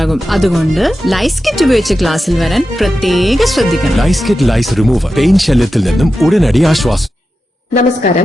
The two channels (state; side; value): normal; both; correlation 0.91